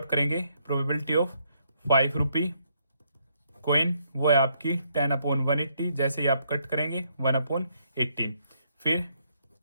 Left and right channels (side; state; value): both; inverted; correlation -0.73